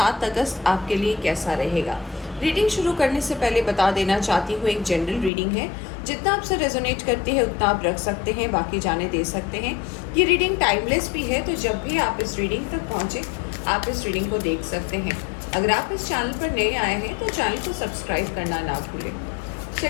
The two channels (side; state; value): right; drops out; at 5.3 s